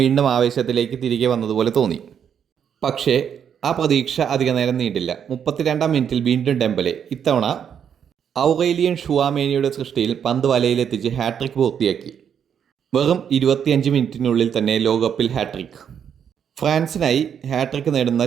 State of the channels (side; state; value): left; quieter; 8.2 dB